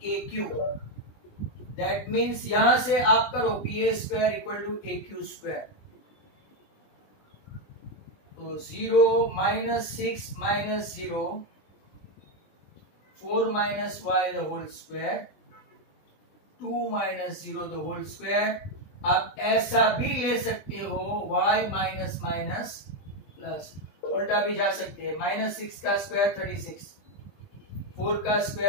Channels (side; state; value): right; late; 20 ms